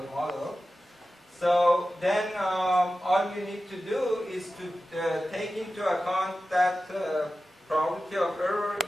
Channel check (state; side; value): normal; both; correlation 0.94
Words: model. So then all you need to do is to take into account that probability of error